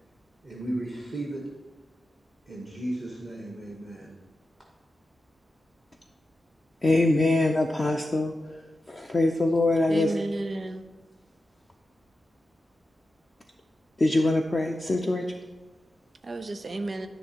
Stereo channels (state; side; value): normal; both; correlation 0.91